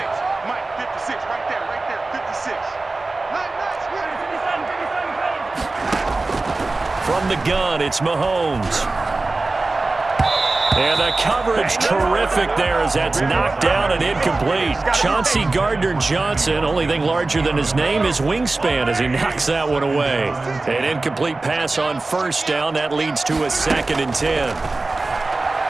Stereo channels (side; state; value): left; quieter; 3.3 dB